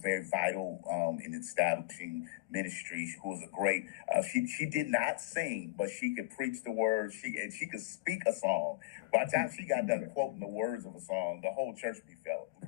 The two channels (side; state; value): right; quieter; 19.7 dB